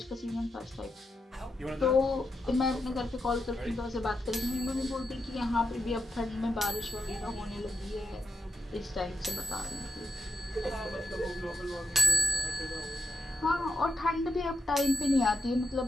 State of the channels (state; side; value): normal; both; correlation 0.82